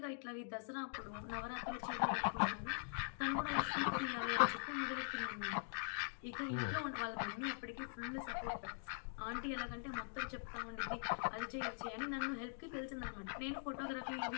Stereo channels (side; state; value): right; silent; digital silence